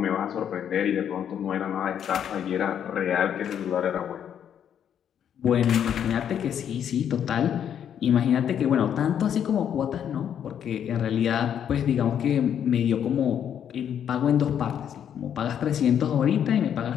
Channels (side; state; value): right; quieter; 9.0 dB